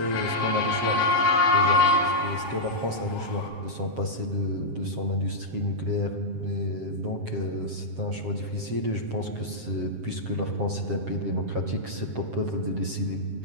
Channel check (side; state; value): left; late; 7.6 ms